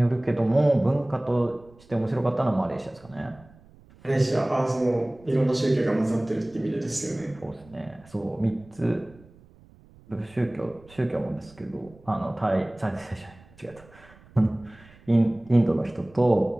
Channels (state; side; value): noise; right; rumble, 25 dB below the sound